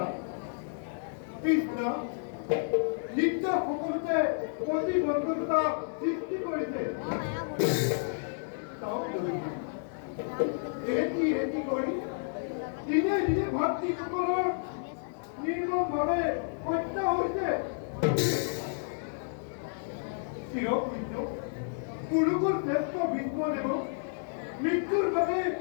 কৃষ্ণ, নিত্য সকলোতে প্ৰতিবন্ধকতা সৃষ্টি কৰিছে। এটি কৰি দিনে দিনে ভাতৃসকলৰ নিৰ্মমভাৱে হত্যা হৈছে। চিৰপূজ্য কুৰুকুল শ্ৰেষ্ঠ ভীষ্মদেৱক মৃত্যুৰ বাবে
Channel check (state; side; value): silent; right; digital silence